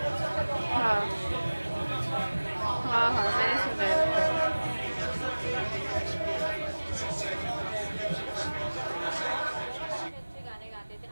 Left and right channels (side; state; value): both; inverted; correlation -1.00